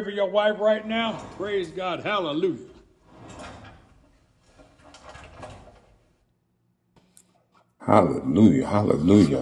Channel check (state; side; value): identical; both; correlation 1.00